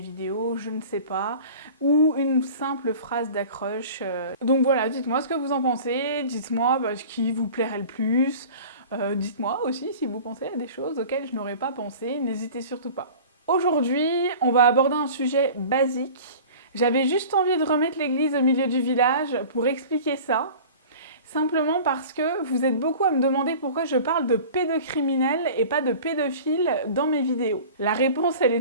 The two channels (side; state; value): both; inverted; correlation -0.41